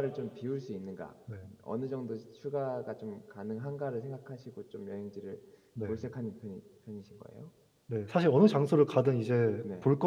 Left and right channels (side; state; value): both; identical; correlation 1.00